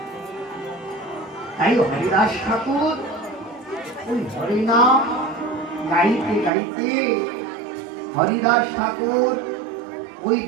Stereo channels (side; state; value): left; drops out; at 6.5 s